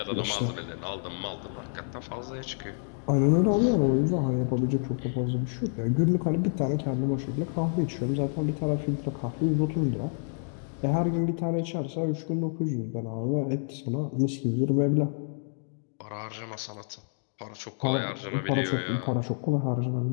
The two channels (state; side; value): silent; right; 59 dB below the other